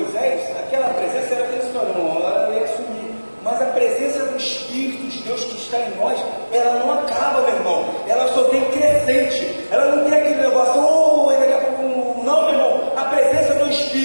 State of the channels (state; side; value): inverted; both; correlation -1.00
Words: aquela presença era transitória, não, ela ia sumir. Mas a presença do Espírito de Deus que está em nós, ela não acaba, meu irmão. Ela só tem crescente. Ela não tem aquele negócio, daqui a pouco, não, meu irmão. A presença do